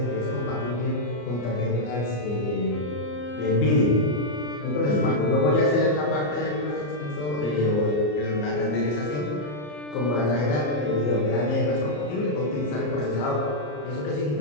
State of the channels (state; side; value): late; right; 34 ms